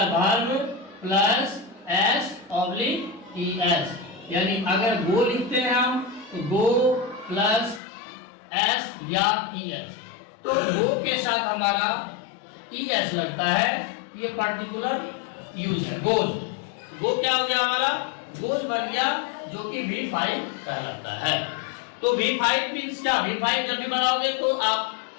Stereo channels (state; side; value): drops out; right; at 7.8 s